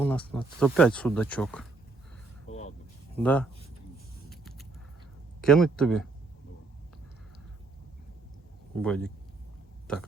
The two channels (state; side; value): quieter; left; 3.7 dB